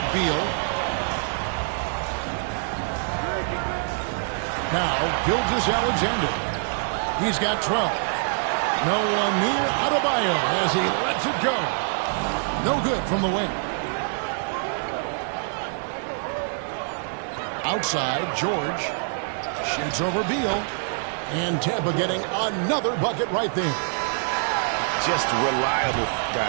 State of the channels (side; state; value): left; silent; 62 dB below the other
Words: Beal. Now, Gilgeous-Alexander. He's got 12. No one near Adebayo as he lets it go. No good from the wing. Outside, George shoots over Beal. And Tampa getting another bucket right there. Just reliable,